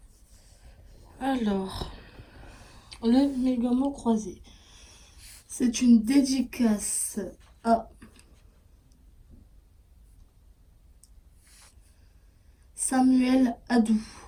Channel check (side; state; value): both; identical; correlation 1.00